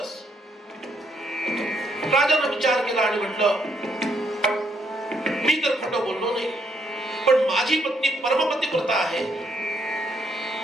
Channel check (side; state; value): both; normal; correlation 0.73